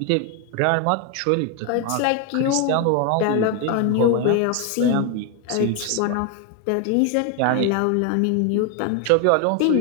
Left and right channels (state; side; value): different; both; correlation 0.01